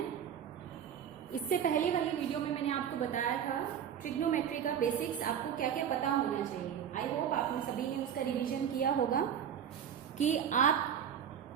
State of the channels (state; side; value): quieter; left; 8.8 dB